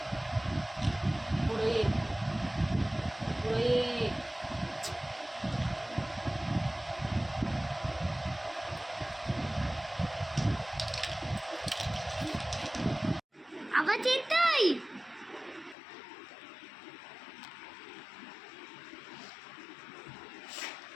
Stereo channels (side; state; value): right; drops out; at 15.8 s